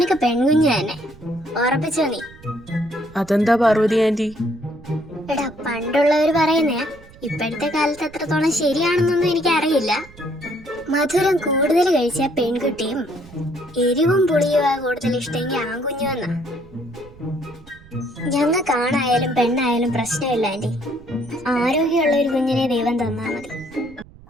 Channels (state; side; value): noise; right; rumble, 22 dB below the sound